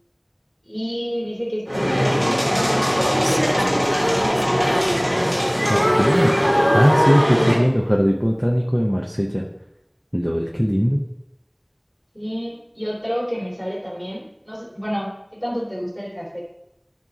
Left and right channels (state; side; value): identical; both; correlation 1.00